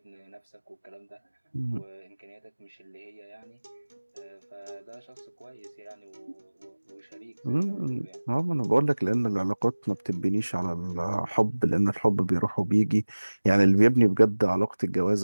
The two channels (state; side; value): inverted; both; correlation -1.00